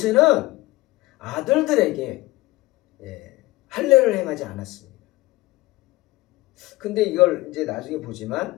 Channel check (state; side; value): quieter; right; 19.6 dB